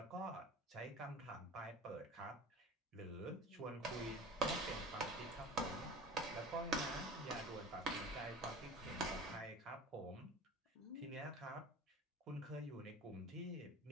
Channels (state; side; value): normal; both; correlation 0.37